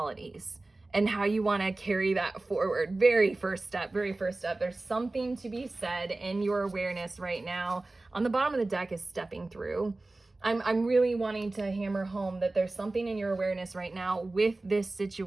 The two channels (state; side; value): quieter; left; 3.0 dB